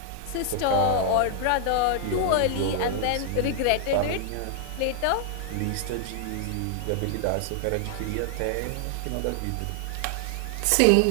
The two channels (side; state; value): both; different; correlation 0.00